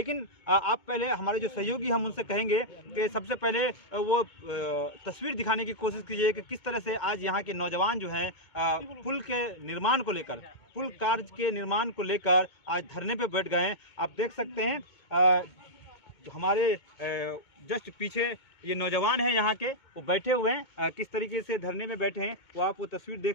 आप पहले हमारे जो सहयोगी हम उनसे कहेंगे कि सबसे पहले वो तस्वीर दिखाने की कोशिश कीजिए कि किस तरह से आज यहाँ के नौजवान जो हैं पुल के निर्माण को लेकर, पुल कार्य के निर्माण को लेकर आज धरने पर बैठ गए हैं। आप देख सकते हैं जो हमारे जस्ट पीछे ये नौजवान हैं यहाँ के, वो बैठे हुए हैं, किस तरीके से धरने में बैठे हैं वो आप वो तस्वीर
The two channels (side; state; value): right; late; 2.2 ms